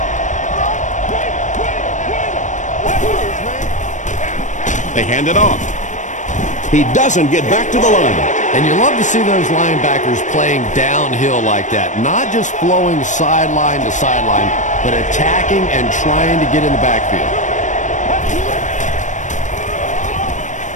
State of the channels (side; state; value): right; late; 0.35 ms